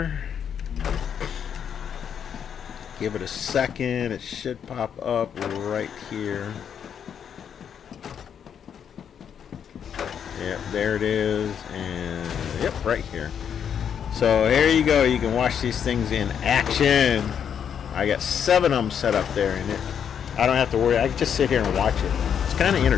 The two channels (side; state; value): right; quieter; 8.1 dB